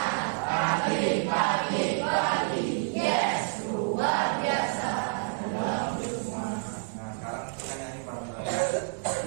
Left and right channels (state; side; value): silent; left; digital silence